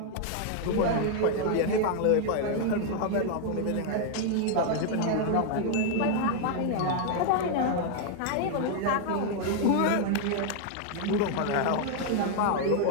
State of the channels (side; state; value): both; different; correlation 0.00